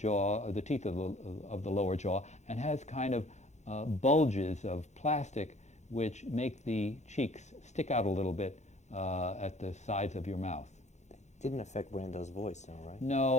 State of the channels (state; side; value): late; right; 0.33 ms